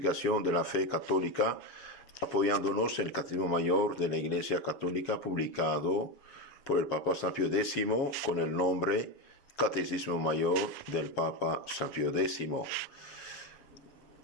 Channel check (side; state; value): right; late; 7.4 ms